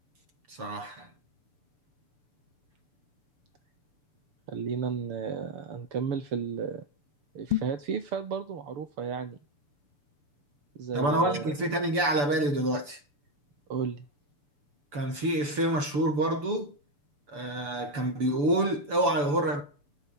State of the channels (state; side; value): late; left; 6.9 ms